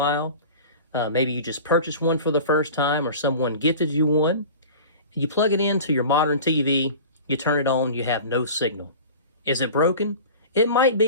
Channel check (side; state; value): both; inverted; correlation -0.38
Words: Maybe you just purchased one for the first time or someone gifted you one. You plug it into your modern TV, you turn it on, you have no signal. Is it broken? It might